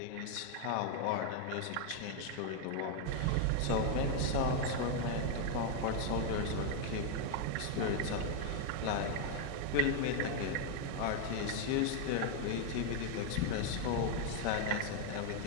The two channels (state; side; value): different; both; correlation 0.00